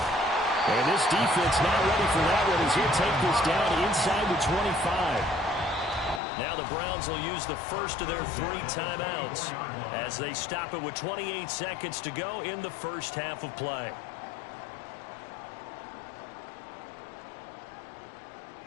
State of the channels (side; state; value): right; drops out; at 6.2 s